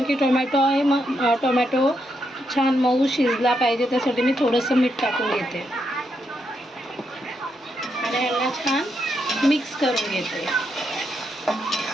की टोमॅटो आहे. टोमॅटो छान मऊ शिजला पाहिजे त्यासाठी मी थोडंसं मीठ टाकून घेते आणि ह्याला छान मिक्स करून घेते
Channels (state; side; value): normal; both; correlation 0.81